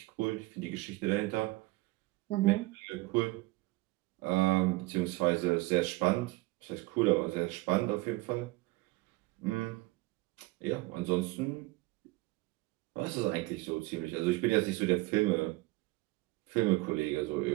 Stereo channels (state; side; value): quieter; left; 21.3 dB